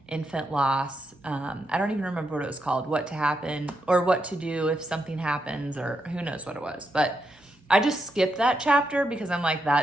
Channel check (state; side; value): normal; both; correlation 0.83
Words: infant loss. I don't even remember what it was called, what to happen or what to do if something happens, or who knows what it was. But I just skipped that chapter because I'm like,